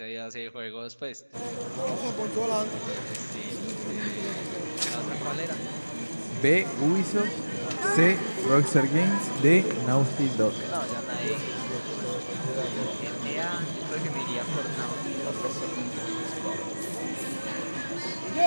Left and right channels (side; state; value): both; inverted; correlation -1.00